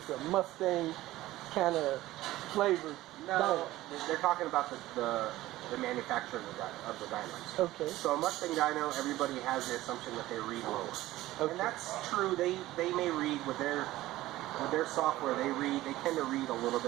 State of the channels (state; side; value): quieter; left; 16.4 dB